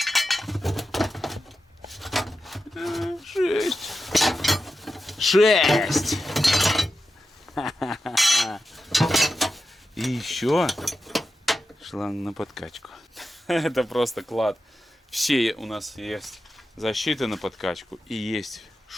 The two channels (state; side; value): normal; both; correlation 0.90